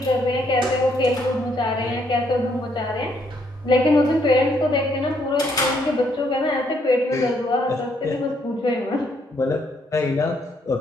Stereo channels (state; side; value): normal; both; correlation 0.71